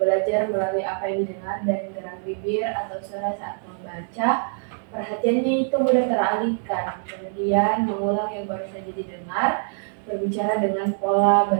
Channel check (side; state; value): left; silent; 62 dB below the other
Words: melalui apa yang didengar dan gerak bibir atau suara saat membaca. Perhatiannya itu mudah teralihkan, kemudian mengulang yang baru saja didengar, berbicara dengan pola